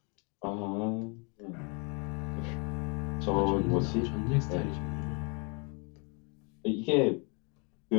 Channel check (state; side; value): quieter; right; 34.7 dB